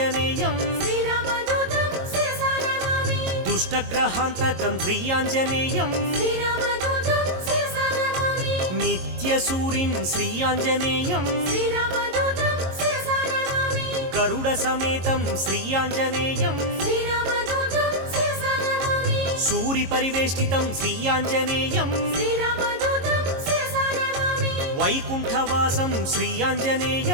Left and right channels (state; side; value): late; left; 22 ms